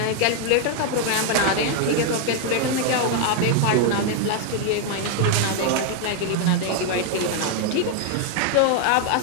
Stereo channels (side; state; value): both; different; correlation 0.00